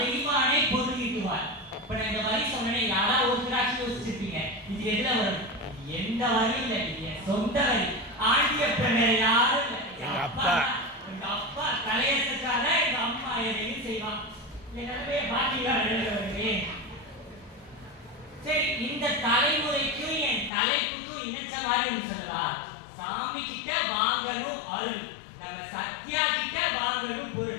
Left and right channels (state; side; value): drops out; right; at 20.5 s